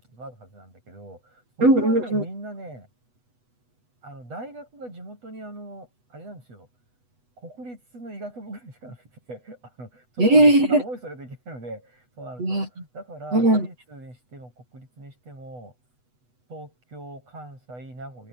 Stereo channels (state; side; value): late; left; 8.1 ms